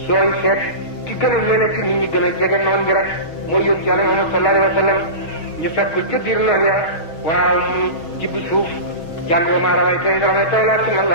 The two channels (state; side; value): late; right; 6.3 ms